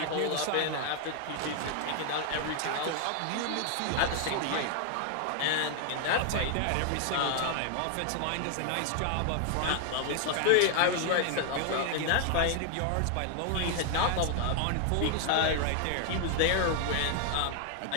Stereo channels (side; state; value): both; different; correlation 0.00